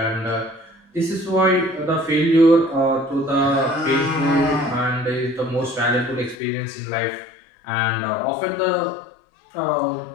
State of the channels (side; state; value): right; drops out; at 6.4 s